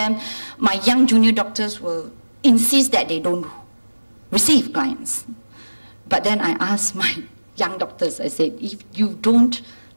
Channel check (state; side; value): inverted; both; correlation -1.00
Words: my young junior doctors will insist that they don't receive clients. But then I asked my young doctors, I said, if you don't